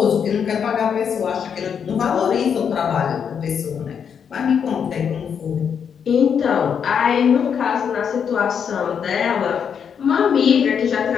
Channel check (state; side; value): quieter; right; 7.3 dB